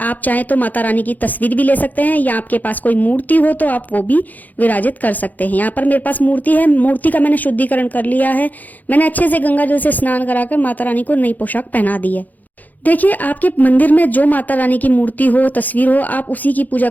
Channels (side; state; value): right; late; 0.082 ms